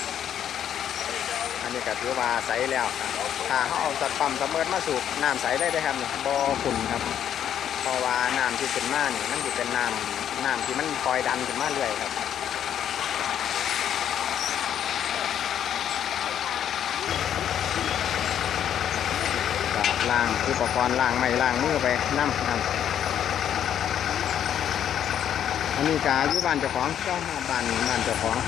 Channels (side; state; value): right; quieter; 9.7 dB